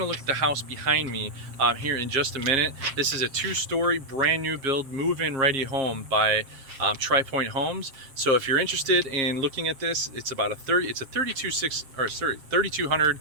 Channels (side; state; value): left; late; 7.3 ms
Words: a look at the house behind me here in just a minute. This is a two-story brand new build move-in ready home by Pointe Homes. So if you're interested in looking at this, it's about a